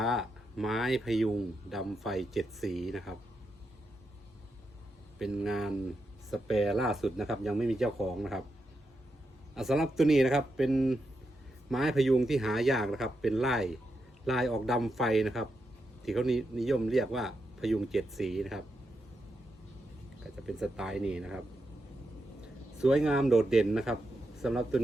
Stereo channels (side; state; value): both; normal; correlation 0.85